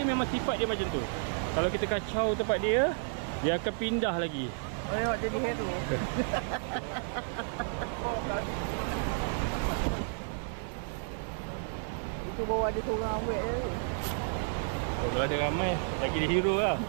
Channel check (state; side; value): silent; left; digital silence